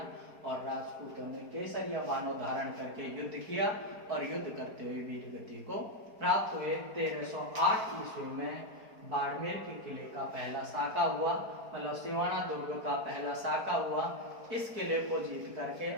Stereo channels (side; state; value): left; late; 4.6 ms